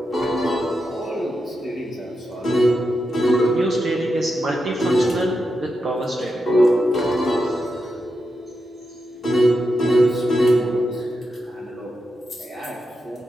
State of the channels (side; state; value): both; normal; correlation 0.87